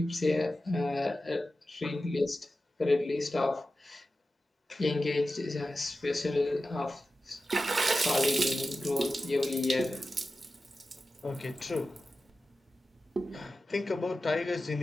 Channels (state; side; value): normal; both; correlation 0.93